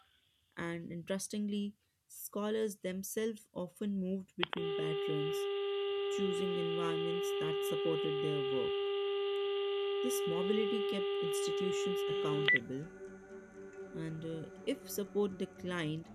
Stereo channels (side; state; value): both; identical; correlation 1.00